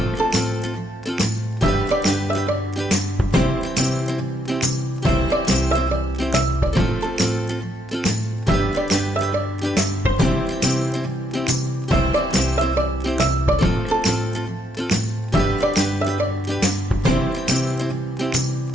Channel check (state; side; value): normal; both; correlation 0.76